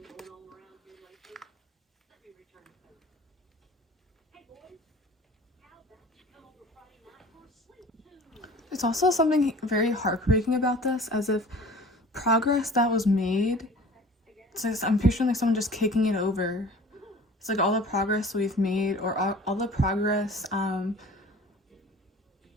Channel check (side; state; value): both; normal; correlation 0.44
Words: There's also something very heartbreaking about this, as if progress that was made, it's like, I'm picturing like someone just kicking it over. It's like all the progress we've made, or all the progress, and